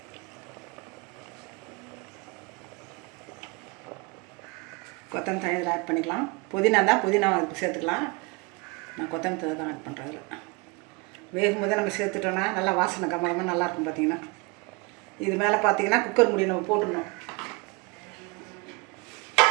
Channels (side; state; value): left; quieter; 28.0 dB